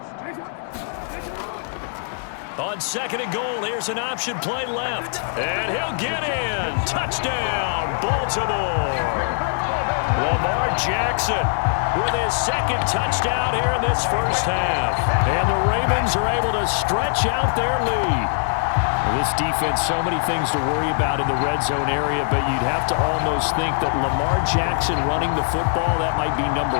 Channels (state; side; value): silent; right; digital silence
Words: On 2nd and goal, here's an option play left. And he'll get in. Touchdown, Baltimore. Lamar Jackson with his 2nd touchdown here in this first half. And the Ravens are able to stretch out their lead. This defense, so many things to worry about in the red zone area, but you'd have to almost think that Lamar Jackson running the football, that might be number